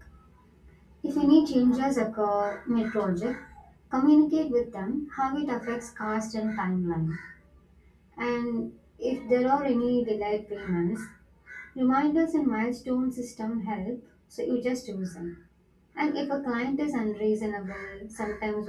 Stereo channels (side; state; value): both; identical; correlation 1.00